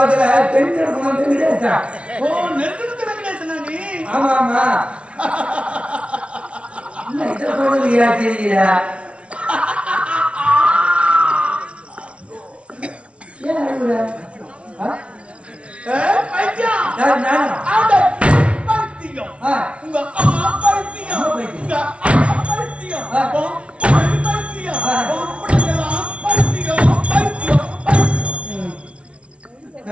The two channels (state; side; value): late; left; 0.061 ms